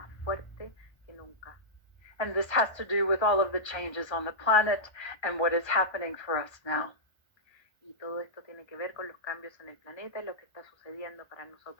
fuerte que nunca. And this has to do with all of the changes on the planet and what is happening for us now. Y todo esto tiene que ver con los cambios en el planeta y lo que está sucediendo para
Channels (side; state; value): right; late; 1.3 ms